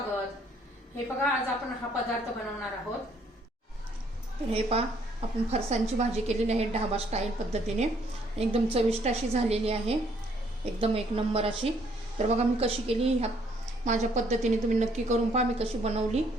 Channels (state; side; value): normal; both; correlation 0.66